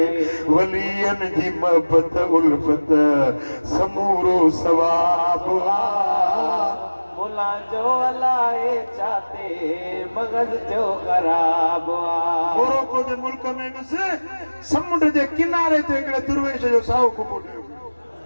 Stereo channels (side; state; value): both; inverted; correlation -1.00